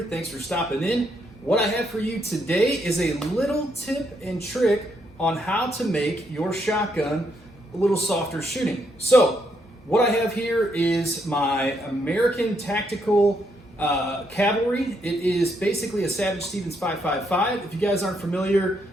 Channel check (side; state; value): both; normal; correlation 0.76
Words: thanks for stopping in. What I have for you today is a little tip and trick on how to make your shotgun a little softer shooting. So what I have here is my American Tactical Cavalry. It is basically a Savage Stevens 5.55. If you guys aren't familiar,